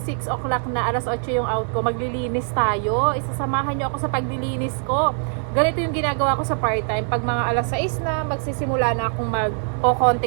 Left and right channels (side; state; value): left; silent; 57 dB below the other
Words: 6 o'clock na, alas 8 yung out ko. Maglilinis tayo. Isasamahan nyo ako sa paglilinis ko. Ganito yung ginagawa ko sa part-time. Pag mga alas 6 na, magsisimula na akong